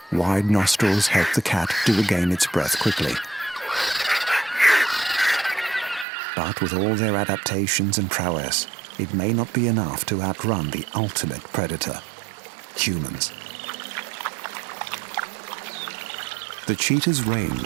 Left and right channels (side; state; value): left; drops out; at 6.1 s